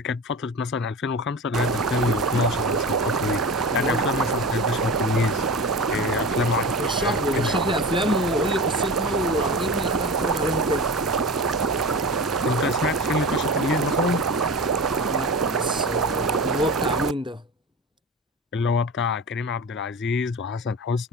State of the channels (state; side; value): normal; both; correlation 0.30